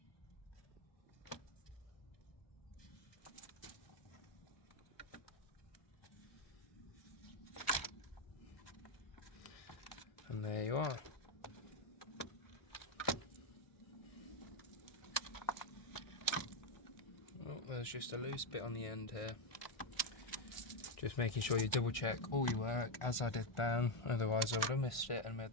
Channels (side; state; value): right; late; 1.6 ms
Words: And there you are. Oh, there's just a loose bit on the end here. Just making sure you double check all your work, as I did then, otherwise I would have missed it and made